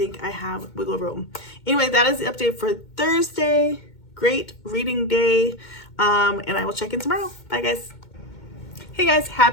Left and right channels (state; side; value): late; right; 2.2 ms